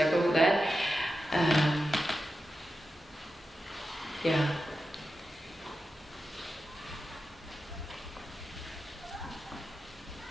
go for that?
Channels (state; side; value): normal; both; correlation 0.91